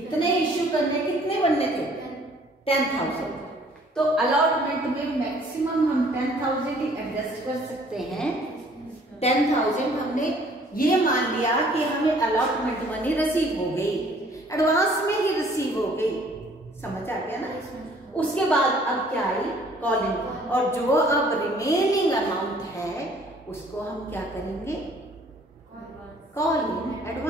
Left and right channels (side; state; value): both; normal; correlation 0.57